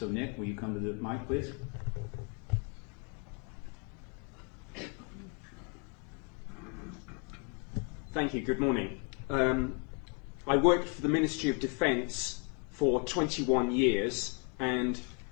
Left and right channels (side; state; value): right; quieter; 37.5 dB